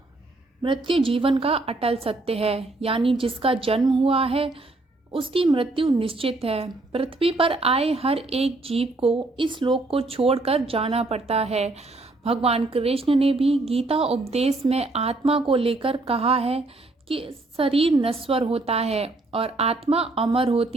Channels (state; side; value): quieter; left; 3.0 dB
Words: मृत्यु जीवन का अटल सत्य है, यानी जिसका जन्म हुआ है उसकी मृत्यु निश्चित है। पृथ्वी पर आए हर एक जीव को इस लोक को छोड़कर जाना पड़ता है। भगवान कृष्ण ने भी गीता उपदेश में आत्मा को लेकर कहा है कि शरीर नश्वर होता है और आत्मा अमर